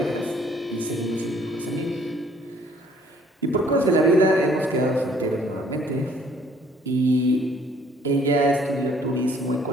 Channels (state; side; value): normal; both; correlation 0.60